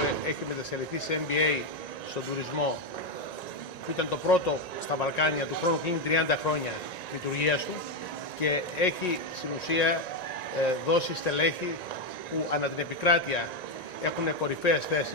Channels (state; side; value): late; right; 1.9 ms